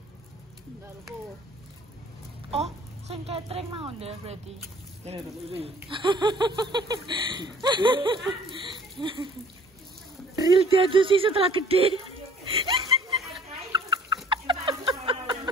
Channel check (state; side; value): normal; both; correlation 0.53